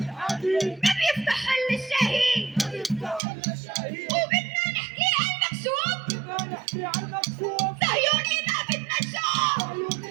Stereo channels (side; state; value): left; drops out; at 3.2 s